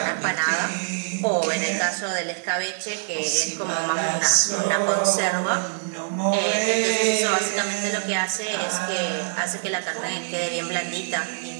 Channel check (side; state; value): left; silent; digital silence